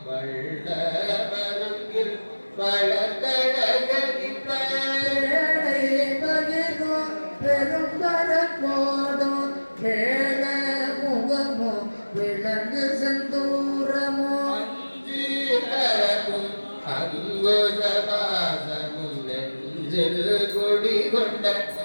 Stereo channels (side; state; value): both; inverted; correlation -1.00